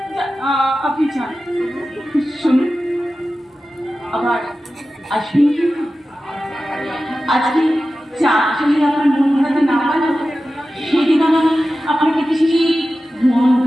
আপনি যান, শুনুন, আবার আসবেন কিন্তু। আজকে চা যদি আপনার মন হাতে না পারল, সেদিন আমি আপনাকে কিছু মন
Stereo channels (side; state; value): both; normal; correlation 0.94